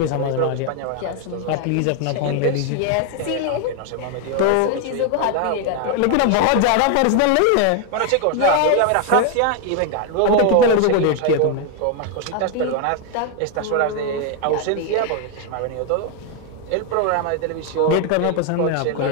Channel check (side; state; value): both; different; correlation 0.00